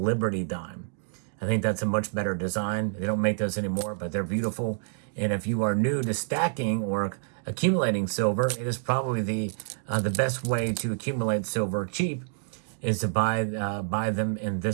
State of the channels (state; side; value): silent; left; digital silence